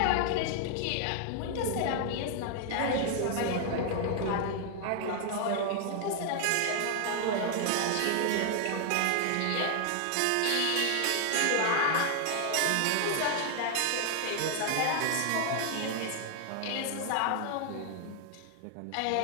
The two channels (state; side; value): different; both; correlation 0.00